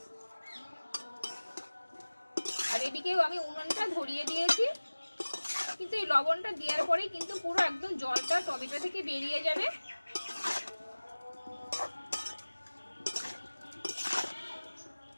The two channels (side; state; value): both; inverted; correlation -1.00